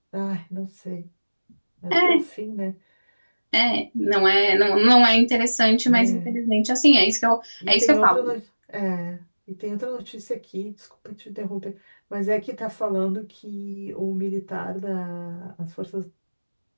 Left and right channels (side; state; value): both; inverted; correlation -1.00